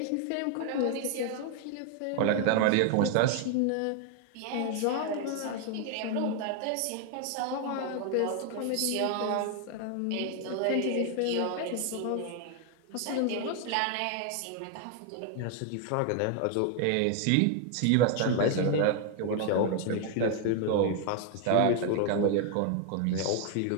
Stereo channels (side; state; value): both; different; correlation 0.00